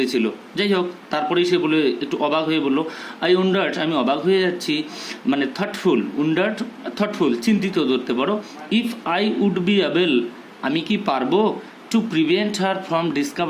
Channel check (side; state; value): both; identical; correlation 1.00